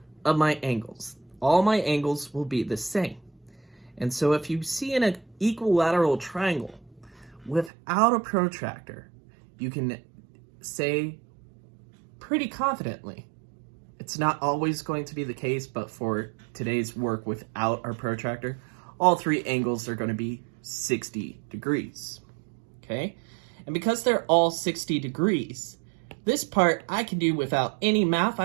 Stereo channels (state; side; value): drops out; left; at 7.7 s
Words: of my angles. All my angles will be the same. And so if you see an equilateral triangle without a protractor, you can say pretty confidently, it's not always going to be the case, but for today's work without our protractor, all three angles are going to be 60 degrees. Okay? And because they're all 60 degrees, this part I can do without any math.